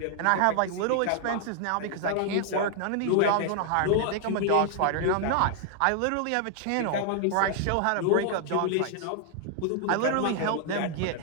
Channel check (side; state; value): both; different; correlation 0.00